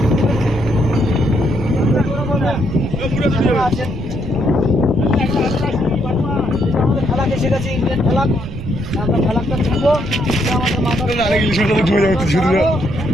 ইন্ডিয়ান ফেলাক আমরা ফেলাকটা তুলবো আমাদের মাথার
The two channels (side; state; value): right; noise; rumble, 9 dB below the sound